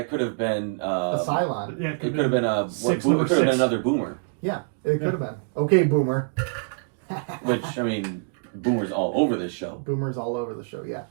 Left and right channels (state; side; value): silent; left; digital silence